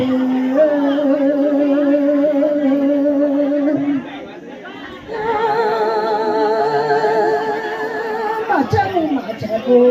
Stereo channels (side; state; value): both; identical; correlation 1.00